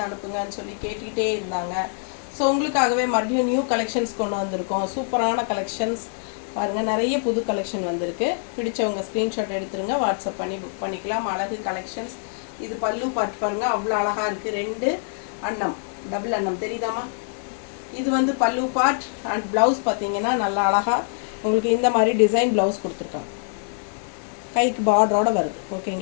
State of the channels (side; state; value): right; silent; digital silence